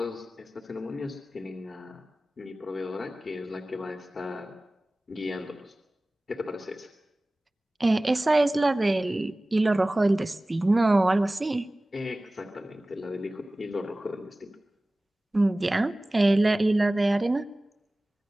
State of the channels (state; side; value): normal; both; correlation 0.98